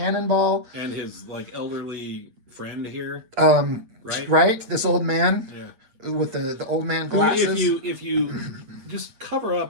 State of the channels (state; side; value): late; left; 8.5 ms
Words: And his like elderly friend here. Right? Right? This old man. Yeah. With the old man glasses. If you just cover